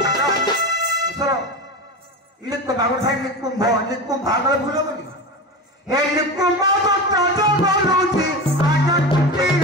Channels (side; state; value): both; normal; correlation 0.25